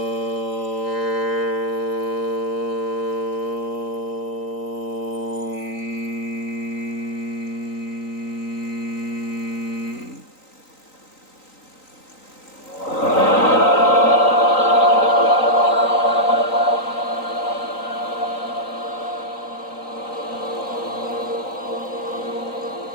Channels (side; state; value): right; late; 3.9 ms